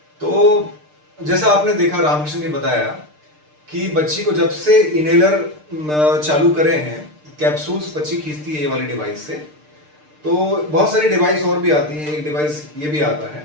तो जैसा आपने देखा, रामकृष्ण ने बताया कि बच्ची को जब से इनहेलर चालू करे हैं, कैप्सूल्स बच्ची खींचती है ये वाली डिवाइस से, तो बहुत सारी डिवाइस और भी आती है, एक डिवाइस ये भी आता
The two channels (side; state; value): left; late; 6.6 ms